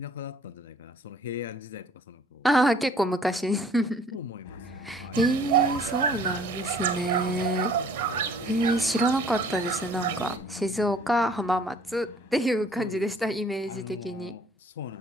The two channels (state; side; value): normal; both; correlation 0.55